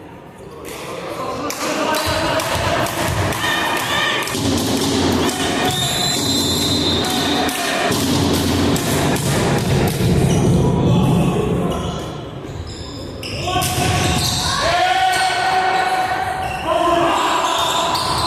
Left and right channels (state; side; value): identical; both; correlation 1.00